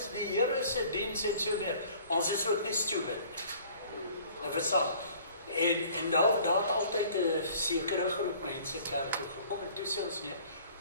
die Here se diens en so meer." Ons is ook nie stupid. Nou verstaan. En daar het altyd 'n sekere groep mense kerk toe gekom en toe sê ons nee,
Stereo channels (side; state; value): both; inverted; correlation -0.52